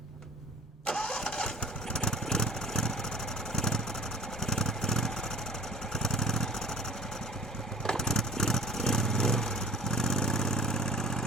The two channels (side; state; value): both; normal; correlation 0.44